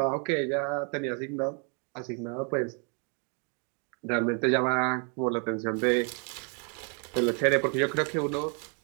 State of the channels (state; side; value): quieter; left; 37.5 dB